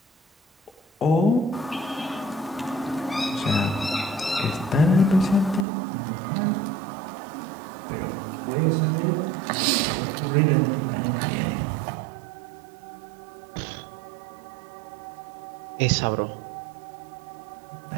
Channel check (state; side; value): drops out; left; at 5.7 s